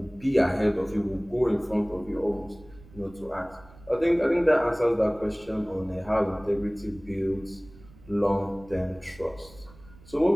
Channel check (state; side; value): noise; right; rumble, 22 dB below the sound